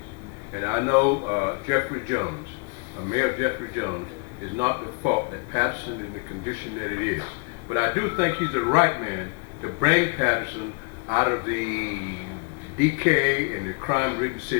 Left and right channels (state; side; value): quieter; right; 35.4 dB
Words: And I know Jeffery Jones, Mayor Jeffery Jones, is not the fault that Paterson is in the condition that it is. But I do think he's the right man to bring Paterson out of the decay and the crime-ridden